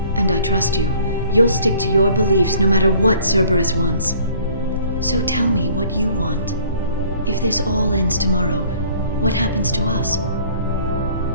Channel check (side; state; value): both; inverted; correlation -0.54